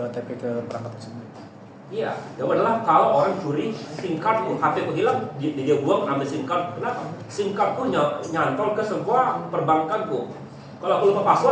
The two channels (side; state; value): both; identical; correlation 1.00